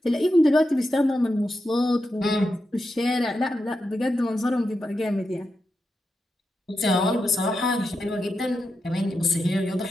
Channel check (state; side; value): normal; both; correlation 0.88